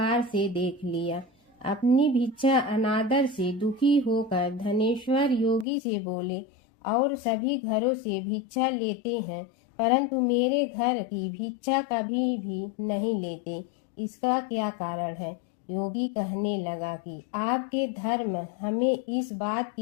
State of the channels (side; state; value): right; drops out; at 5.7 s